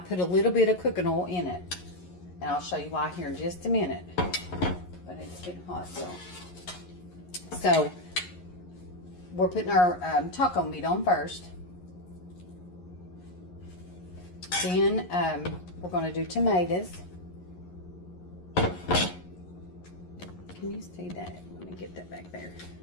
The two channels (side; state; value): right; late; 11 ms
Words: a little bit of cooking oil in it. And I'll show you why here in just a minute. But it's getting hot, so we're putting our taco meat on first. Then we're going to do tomatoes. Can you see that? Let me get that back there.